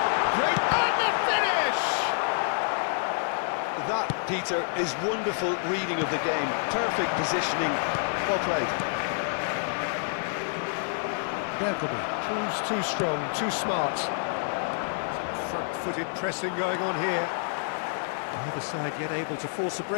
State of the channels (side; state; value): right; silent; digital silence